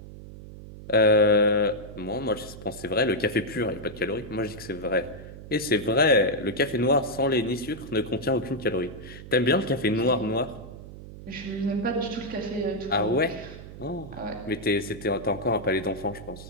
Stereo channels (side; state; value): right; noise; hum, 14 dB below the sound